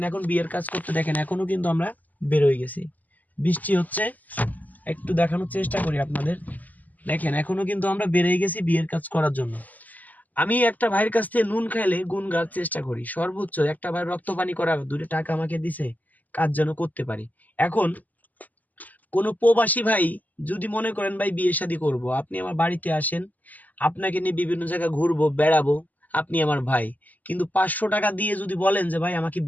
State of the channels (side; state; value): right; late; 0.080 ms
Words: এখন বিয়ের কাজ করতে, দেখেন এখনো কিন্তু আমরা বের হয়ে গেছি, বৃষ্টি হচ্ছে, একটু দেখানোর চেষ্টা করি আপনাদের। দেখেন এখনো কিন্তু আমরা বেরিয়ে গেছি বিয়ের কাজ করার জন্য। আমি একটা ভাইয়ের কাছ থেকে নুন খাইলে গুণ গাওয়ার চেষ্টা করি, সর্বোচ্চ একটা ভাই রক্ত পানি করা 2 টাকা আমাকে দিছে, কাজ যেন করতে পারি। এখন কোনো প্রবাসী ভাই যদি মনে করেন ভাই বিয়ে শাদী করবো, আপনি আমার বাড়িতে আসেন, আপনাকে নিয়ে বিভিন্ন জায়গায় ঘুরবো বেড়াবো, আপনি আমার ভাই, কিন্তু 500 টাকা দিয়ে যদি বলেন যে ভাই আমাকে